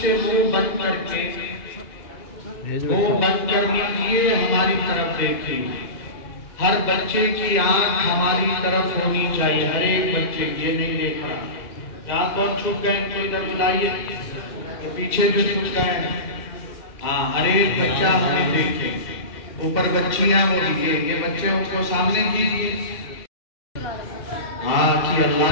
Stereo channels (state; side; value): late; right; 2.0 ms